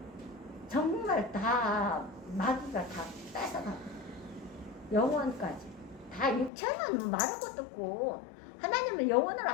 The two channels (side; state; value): right; drops out; at 6.5 s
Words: 정말 다 마귀가 다 뺏어가고 영혼까지 다 육체는 말할 것도 없고 하나님은 영혼을